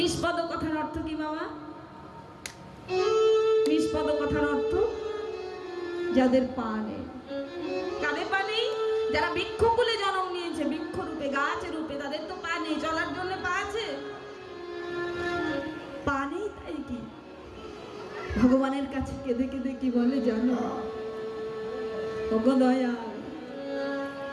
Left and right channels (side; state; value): both; identical; correlation 1.00